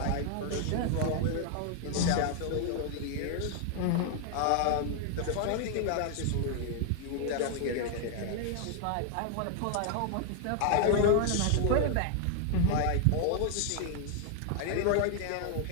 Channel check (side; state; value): both; different; correlation 0.00